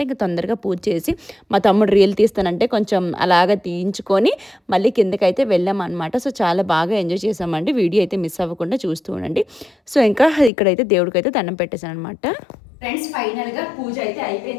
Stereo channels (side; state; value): right; drops out; at 10.5 s